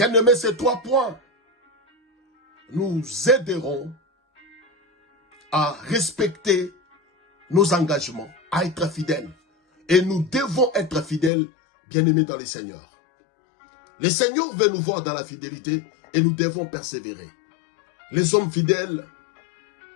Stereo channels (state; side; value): drops out; right; at 11.3 s